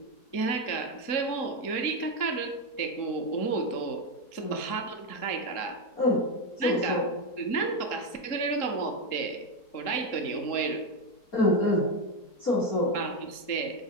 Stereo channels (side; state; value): right; late; 3.8 ms